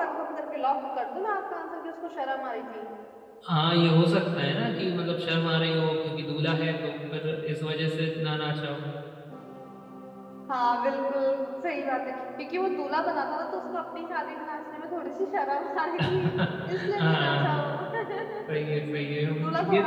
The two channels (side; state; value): both; identical; correlation 1.00